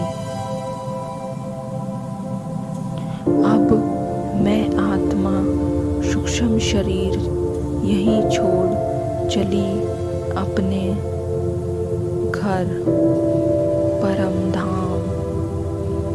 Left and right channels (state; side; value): identical; both; correlation 1.00